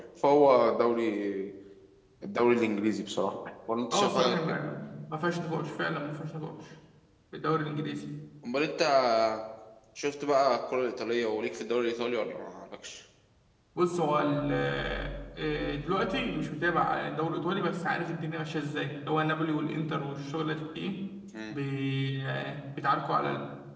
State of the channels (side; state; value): both; identical; correlation 1.00